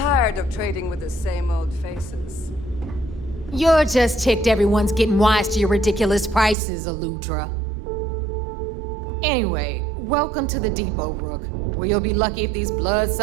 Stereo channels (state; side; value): drops out; left; at 6.6 s